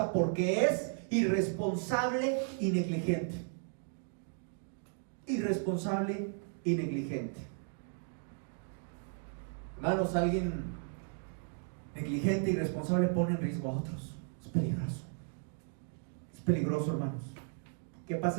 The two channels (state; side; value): silent; left; 54 dB below the other